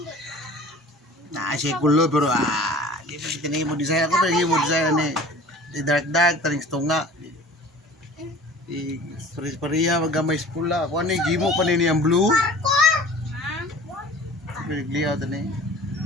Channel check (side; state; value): both; normal; correlation 0.44